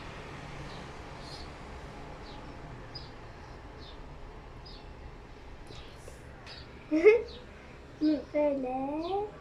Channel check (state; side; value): identical; both; correlation 1.00